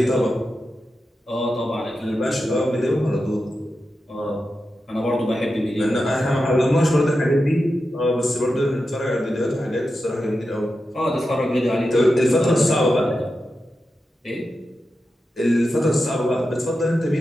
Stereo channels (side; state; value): both; normal; correlation 0.90